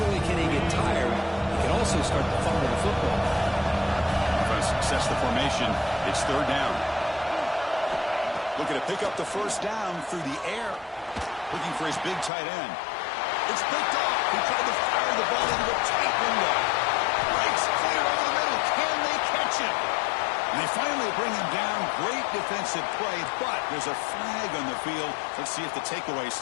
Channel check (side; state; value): right; drops out; at 12.3 s